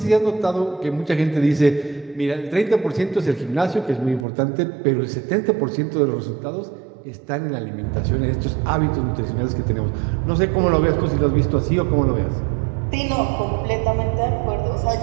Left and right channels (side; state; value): left; drops out; at 4.2 s